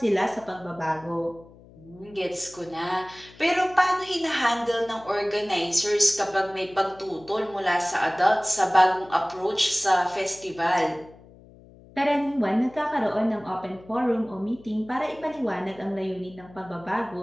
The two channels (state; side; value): noise; left; hum, 23 dB below the sound